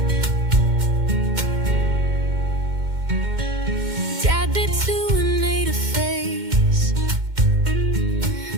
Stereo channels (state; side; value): late; left; 2.1 ms